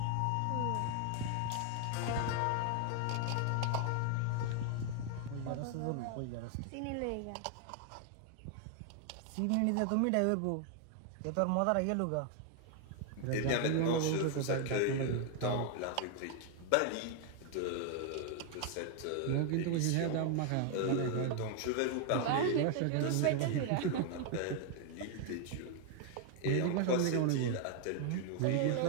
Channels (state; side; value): different; both; correlation 0.00